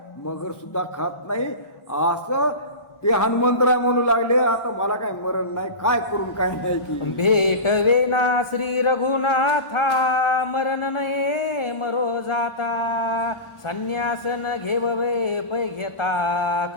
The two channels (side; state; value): right; late; 1.0 ms